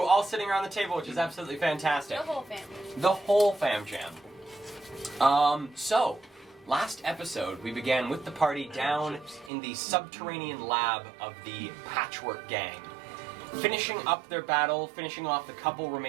all sitting around the table, which is absolutely fantastic. The whole family. The whole fam jam. So, last episode we began with the party down in the subterranean lab of the Patchwork Gang. Finishing up their battle, finishing off the couple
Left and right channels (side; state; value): left; drops out; at 9.5 s